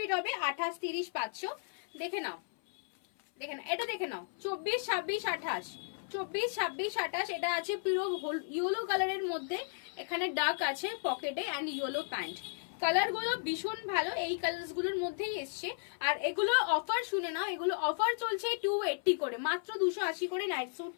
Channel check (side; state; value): right; silent; 55 dB below the other